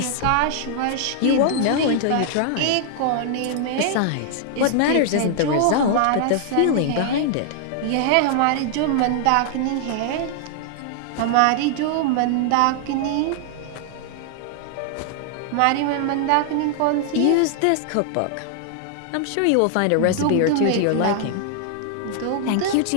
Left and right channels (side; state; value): both; different; correlation 0.00